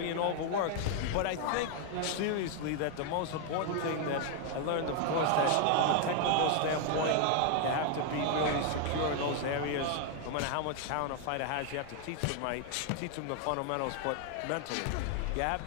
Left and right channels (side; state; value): both; different; correlation 0.00